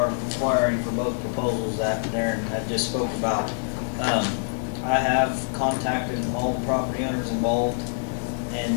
requiring for both proposals that Darren had just spoke about. I have contacted all the property owners involved,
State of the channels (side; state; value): right; silent; digital silence